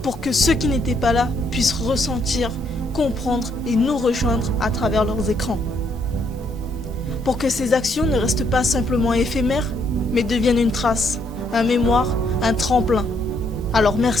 pour que ceux qui n'étaient pas là puissent ressentir, comprendre et nous rejoindre à travers leurs écrans. Pour que ces actions ne restent pas simplement éphémères, mais deviennent une trace, un mémoire, un tremplin. Alors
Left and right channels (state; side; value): normal; both; correlation 0.71